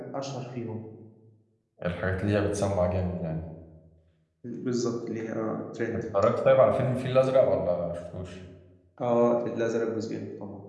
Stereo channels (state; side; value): identical; both; correlation 1.00